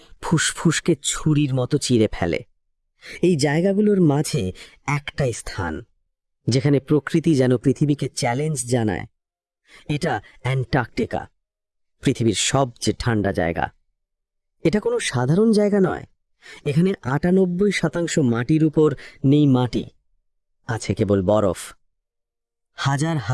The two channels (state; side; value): identical; both; correlation 1.00